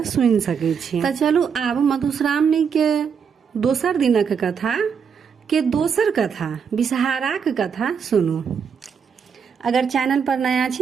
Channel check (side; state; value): left; quieter; 6.7 dB